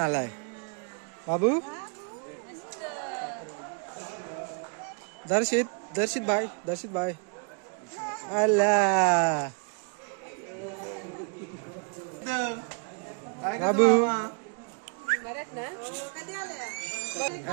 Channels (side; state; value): left; quieter; 38.9 dB